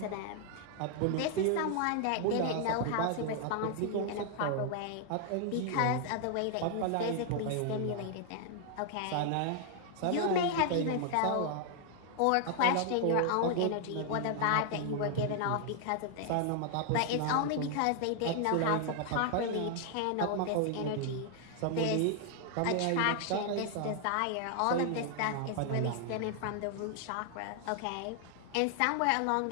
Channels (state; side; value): different; both; correlation 0.00